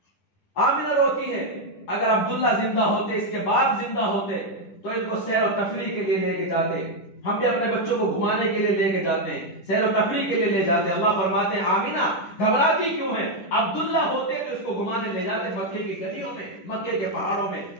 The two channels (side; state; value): right; late; 10 ms